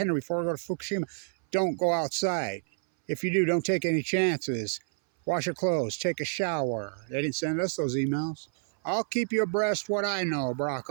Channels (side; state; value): left; silent; 59 dB below the other